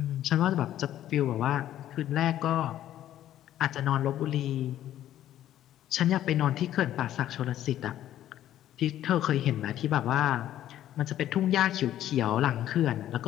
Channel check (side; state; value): right; quieter; 12.2 dB